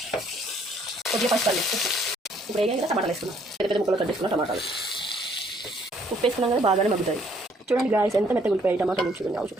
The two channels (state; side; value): normal; both; correlation 0.65